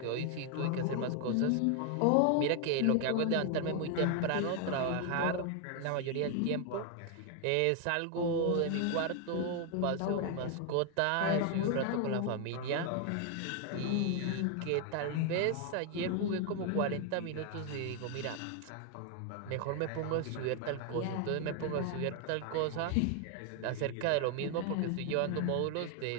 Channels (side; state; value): both; different; correlation 0.00